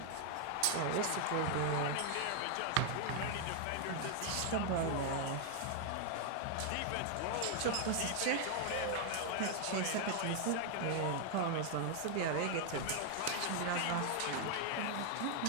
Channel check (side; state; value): both; different; correlation 0.00